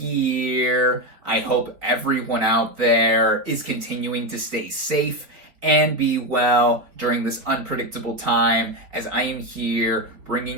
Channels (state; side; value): late; left; 4.2 ms